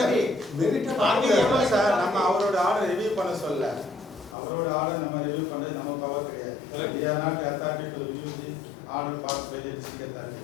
Merit Are we the appellate sir authority? நம்ம அவரோட order review பண்ண சொல்ல. அவரோட order நம்ம review பண்றது நம்ம power கிடையாது. We are not the authority to review the order passed by the district authority.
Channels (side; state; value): right; drops out; at 4.4 s